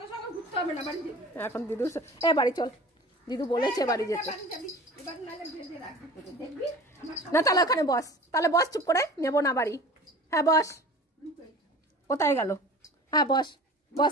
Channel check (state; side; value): normal; both; correlation 0.41